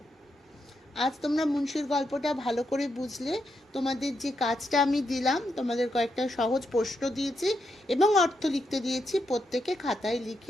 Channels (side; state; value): both; normal; correlation 0.82